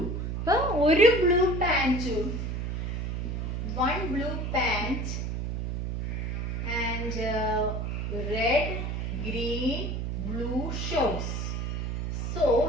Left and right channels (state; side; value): noise; right; hum, 2 dB below the sound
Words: അപ്പോൾ ഒരു blue പാൻറ്റും 1 blue pant and red, green, blue shorts. So